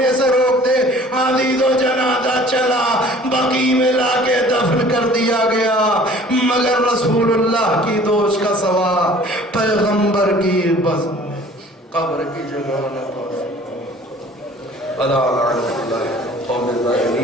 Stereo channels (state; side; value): normal; both; correlation 0.50